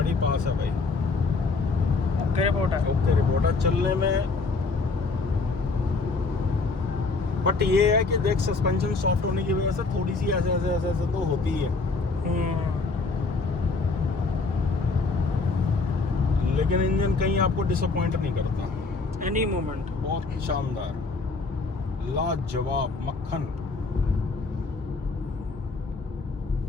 पास है भाई। ओके रिपोर्ट है। ओके रिपोर्ट है चलने में। बट ये है कि देख, सस्पेंशन सॉफ्ट होने की वजह से थोड़ी सी ऐसे ऐसे ऐसे ऐसे तो होती है, लेकिन इंजन कहीं आपको डिसअपॉइंट नहीं करता। एनी मोमेंट बहुत शानदार। लाजवाब मक्खन।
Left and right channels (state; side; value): quieter; right; 4.0 dB